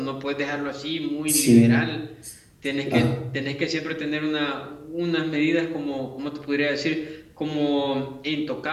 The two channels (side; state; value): both; identical; correlation 1.00